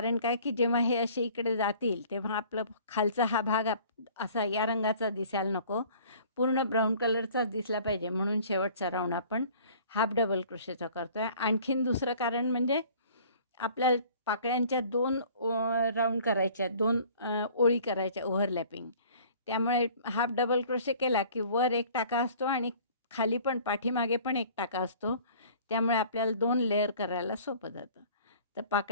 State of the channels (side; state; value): both; inverted; correlation -0.51